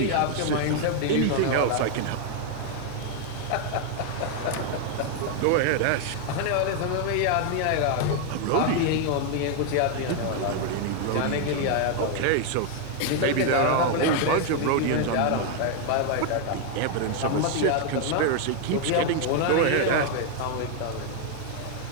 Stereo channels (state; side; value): different; both; correlation 0.00